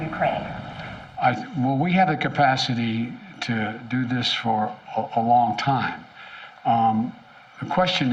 Well, we have the capacity to do this for a long time. The question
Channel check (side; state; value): both; identical; correlation 1.00